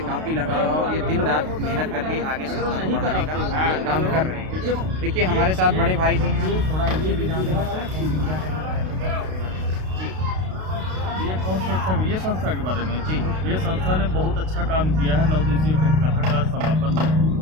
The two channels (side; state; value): left; late; 32 ms